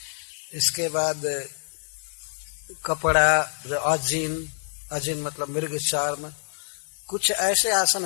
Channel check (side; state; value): right; silent; digital silence